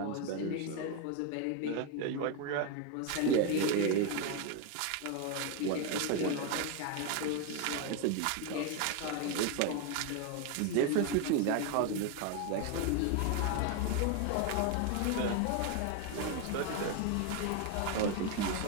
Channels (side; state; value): both; different; correlation 0.02